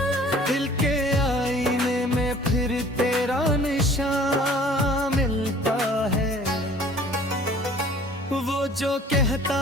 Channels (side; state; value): both; normal; correlation 0.51